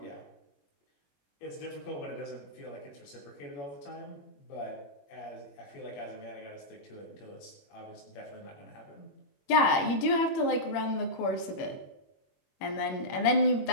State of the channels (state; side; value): late; right; 21 ms